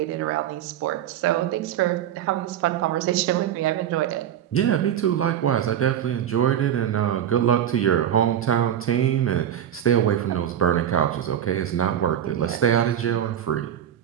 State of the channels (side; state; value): left; quieter; 10.3 dB